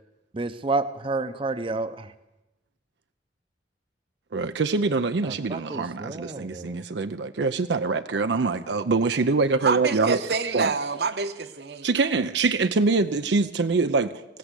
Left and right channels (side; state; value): left; quieter; 3.5 dB